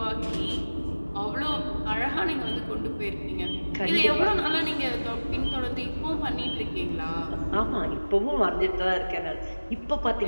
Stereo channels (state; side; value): inverted; both; correlation -1.00